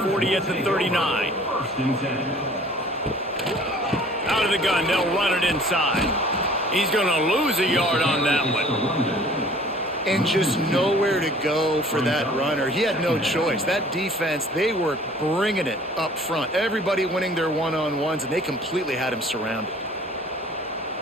40 at the 39. First and 10. out of the gun. They'll run it inside. He's going to lose a yard on that one. And just nowhere to go for that runner. He had no choice. That defense, they were bringing it up front. Everybody winning their one-on-ones, and they completely had him surrounded.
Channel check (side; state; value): both; normal; correlation 0.51